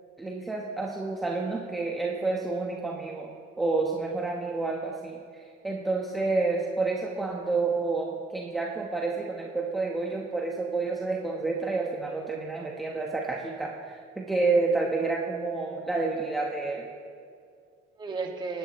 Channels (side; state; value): left; quieter; 3.1 dB